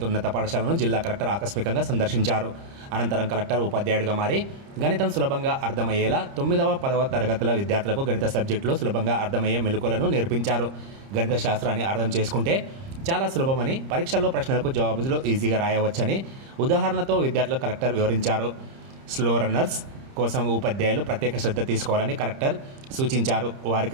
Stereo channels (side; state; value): left; late; 30 ms